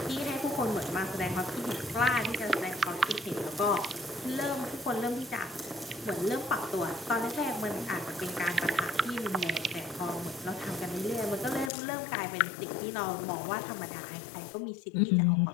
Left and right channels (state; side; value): drops out; right; at 11.7 s